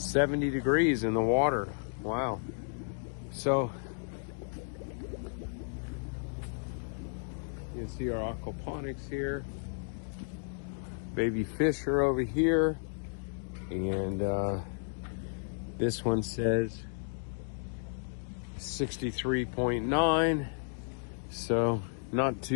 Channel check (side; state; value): right; silent; digital silence